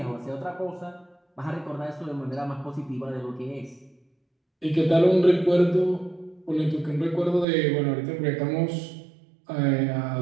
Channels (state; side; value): drops out; left; at 7.5 s